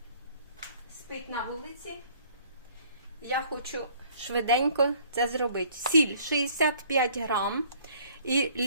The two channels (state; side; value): inverted; both; correlation -0.58